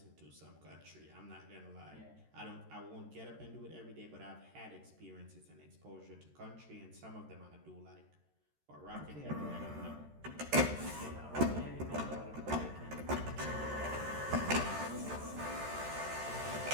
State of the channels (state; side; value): late; left; 13 ms